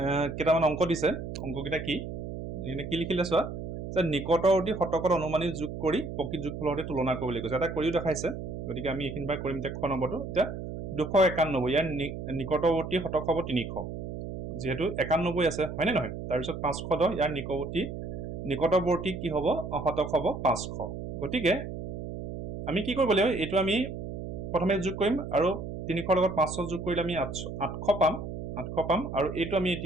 কেটামান অংক দিছে অংককিটা কি এনে কি লিখিলে চোৱা যে নিকটৱৰ্তী শতকত অনুমানিক যোগ কৰি প্ৰকৃত যোগফলৰ সৈতে তুলনা কৰিবলৈ কৈছে এটা কৰিও দেখাইছে গতিকে আমি এখিনবাৰ কৰিম তে খ নম্বৰটো এতিয়া 291 ইয়াৰ নিকটৱৰ্তী শতক হ'ব 300 যেহেতু 91 আছে হয়নে নহয় তাৰ পিছত 510 ইয়াৰ নিকটৱৰ্তী কি হ'ব শতক হ'ব 500 গতিকে আমি কি কৰিব লাগিব এটো আমি প্ৰথমে যোগ কৰিম আৰু 300 লগত 500 যোগ কৰিলে আমি 800 পাম আৰু এটো আমি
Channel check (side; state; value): right; noise; hum, 7 dB below the sound